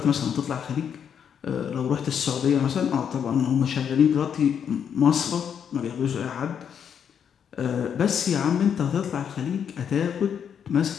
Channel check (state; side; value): quieter; right; 8.0 dB